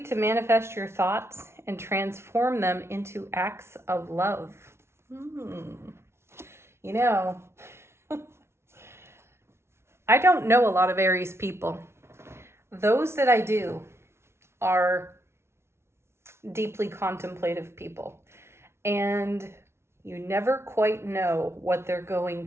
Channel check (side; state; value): left; late; 0.12 ms